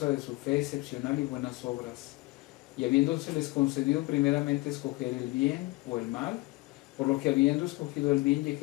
de su fe excepcional y buenas obras, y habiéndoseles concedido primeramente escoger el bien o el mal, por lo que habiendo escogido el bien y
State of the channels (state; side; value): quieter; right; 22.4 dB